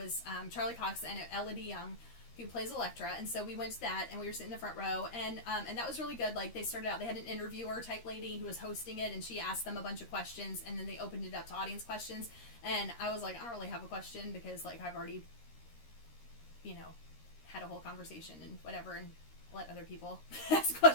Charlie Cox and Elodie Young, who plays Elektra, and so we went to that, and we were sitting in the front row, and that was really good. Like, they started out, they had an interviewer type lady who was hosting it, and she asked them a bunch of questions, and then they opened it up to audience questions, and I was like, I don't really have a question, because, like, I've already, you know, had a whole conversation and whatever, and let other people ask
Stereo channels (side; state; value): right; late; 13 ms